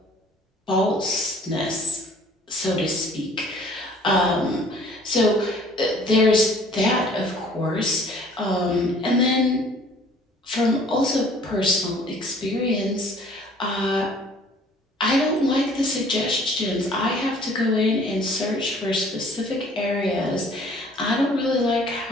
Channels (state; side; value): normal; both; correlation 0.54